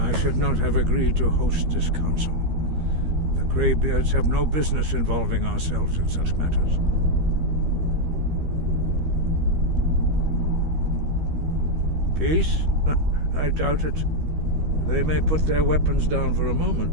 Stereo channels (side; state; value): left; late; 13 ms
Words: I should not have agreed to host this council. The Greybeards have no business involving ourselves in such matters. Peace? I doubt it. They may put their weapons down for a moment,